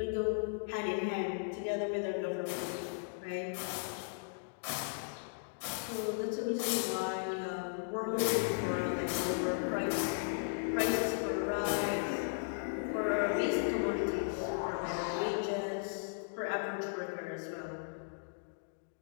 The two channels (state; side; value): silent; right; digital silence